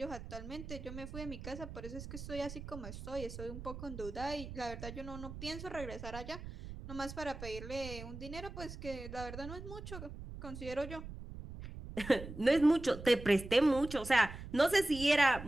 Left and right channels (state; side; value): noise; right; rumble, 11 dB below the sound